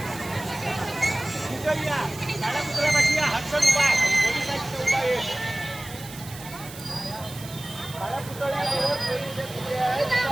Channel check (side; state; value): right; noise; hiss, 15 dB below the sound